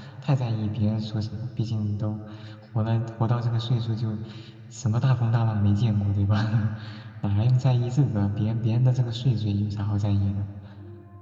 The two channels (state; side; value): identical; both; correlation 1.00